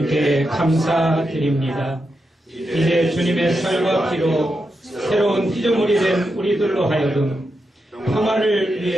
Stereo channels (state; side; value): normal; both; correlation 0.86